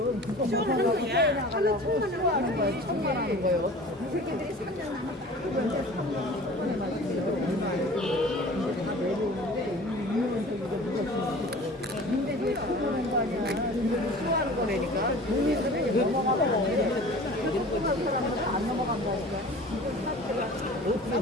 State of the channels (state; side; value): normal; both; correlation 0.42